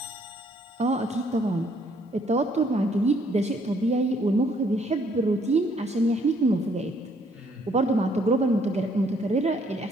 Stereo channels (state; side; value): normal; both; correlation 0.66